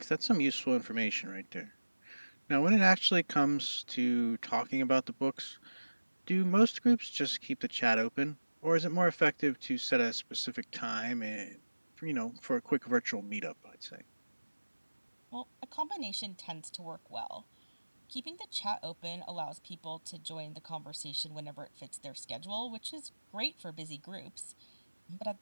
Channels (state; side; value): inverted; both; correlation -1.00